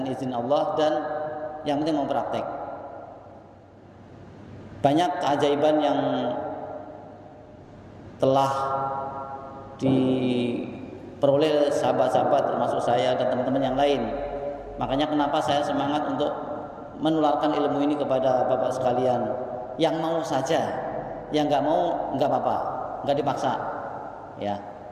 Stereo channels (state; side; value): identical; both; correlation 1.00